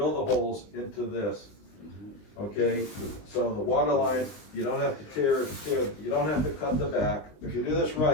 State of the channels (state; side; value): late; right; 19 ms